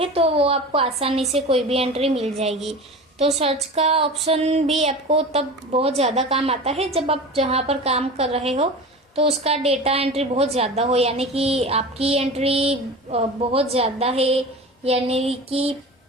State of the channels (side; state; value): both; normal; correlation 0.33